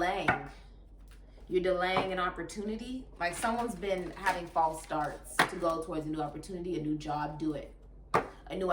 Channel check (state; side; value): identical; both; correlation 1.00